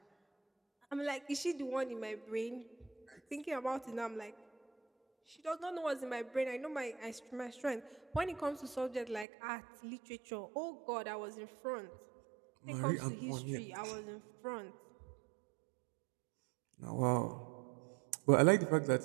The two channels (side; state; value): left; drops out; at 9.2 s